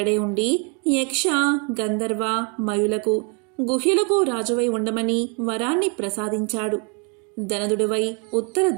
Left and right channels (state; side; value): quieter; left; 35.0 dB